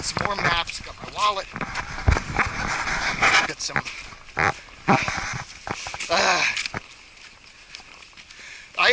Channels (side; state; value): both; identical; correlation 1.00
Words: some more maps. Got my wallet. Got some. I